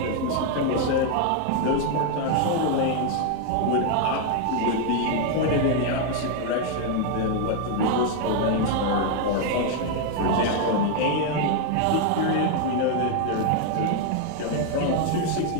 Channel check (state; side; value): different; both; correlation 0.00